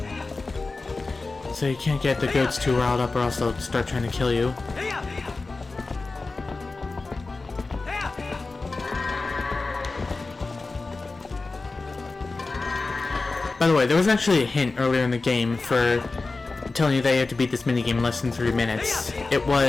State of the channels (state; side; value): quieter; right; 3.6 dB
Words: So you can't get the goats too riled up or else they'll start trying to kill you. By the way, there was actually a hint earlier in the game for telling you that you have to beat this minigame in less than 3 minutes. It